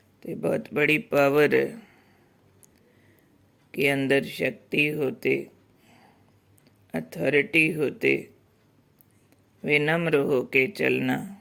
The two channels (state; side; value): identical; both; correlation 1.00